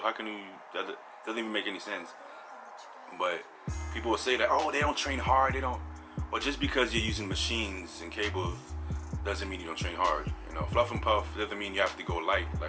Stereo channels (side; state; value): both; identical; correlation 1.00